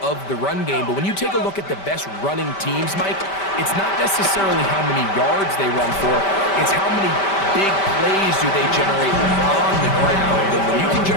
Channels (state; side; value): late; right; 5.1 ms